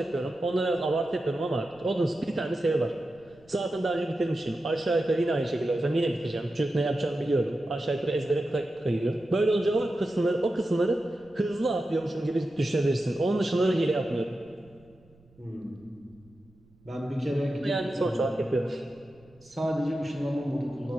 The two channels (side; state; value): right; noise; rumble, 30 dB below the sound